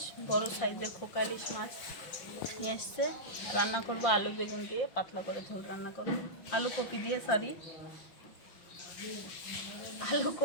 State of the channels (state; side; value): late; right; 5.7 ms